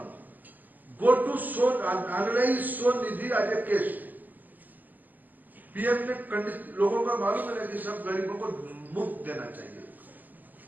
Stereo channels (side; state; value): left; late; 0.084 ms